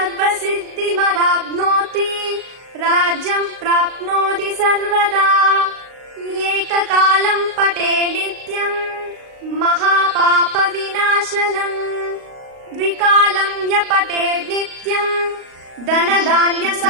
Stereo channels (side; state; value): left; late; 38 ms